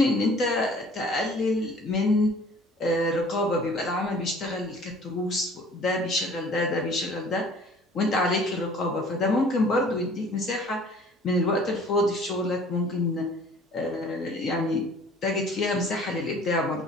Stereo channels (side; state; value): both; normal; correlation 0.51